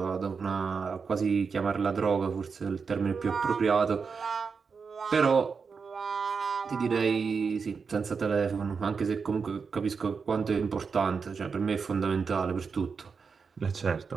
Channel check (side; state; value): left; quieter; 5.4 dB